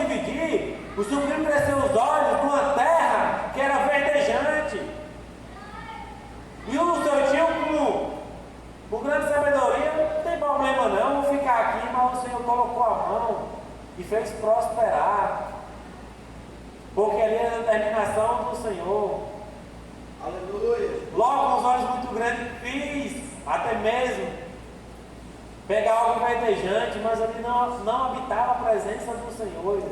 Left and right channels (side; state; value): both; identical; correlation 1.00